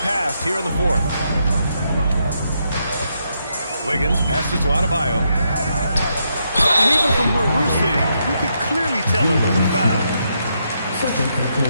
passed here in the fourth. Wiggins passes to Adebayo. And even from where we're sitting, you could clearly tell it was a foul. Second personal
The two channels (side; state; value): both; inverted; correlation -0.79